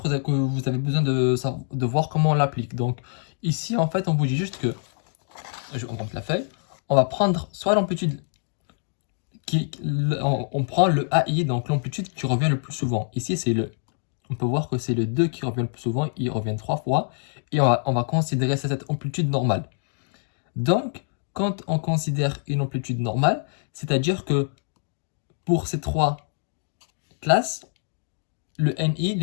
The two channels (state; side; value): silent; right; digital silence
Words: que vous avez besoin de voir comment on l'applique. Donc, ici, en fait, on vous dit juste que, on monte la feuille, on va prendre soit l'amplitude, on prend le AI, donc l'amplitude qui revient le plus souvent. Ici, on peut voir que c'est le 2 qui revient le plus souvent, il revient 3 fois, et on va considérer cette amplitude normale. Donc, quand on considère une amplitude normale, c'est-à-dire que pour ces trois classes, le NI,